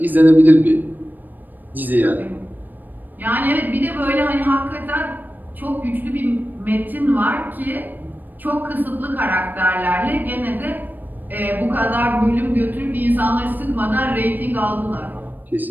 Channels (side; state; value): left; late; 0.089 ms